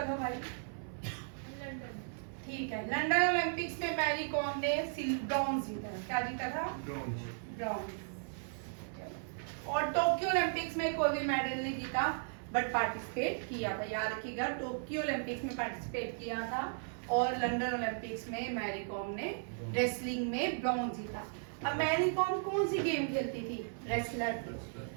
लो भाई। ठीक है, लंदन ओलंपिक्स में मैरी कॉम ने ब्रॉन्ज जीता। क्या जीता था? ब्रॉन्ज। और टोक्यो ओलंपिक्स में कोई भी मेडल नहीं जीता, बट पार्टिसिपेट किया था। याद रखिएगा, टोक्यो ओलंपिक्स में पार्टिसिपेट किया था और लंदन ओलंपिक्स में मैरी कॉम ने रेसलिंग में ब्रॉन्ज जीता। अब मैरी कॉम कौन सी गेम खेलती थी? रेसलर थी।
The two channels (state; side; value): silent; left; 54 dB below the other